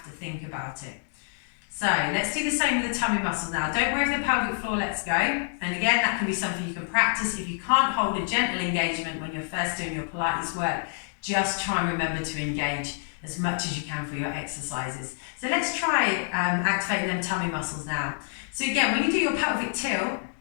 to think about it. So let's do the same with the tummy muscles now. Don't worry if the pelvic floor lets go. And again, that can be something you can practice. If you can't hold a gentle engagement when you're first doing your Pilates work, just try and remember to engage as much as you can for your exercises. So let's try activating them tummy muscles now. So again, when you do your pelvic tilt,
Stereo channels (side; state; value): right; silent; digital silence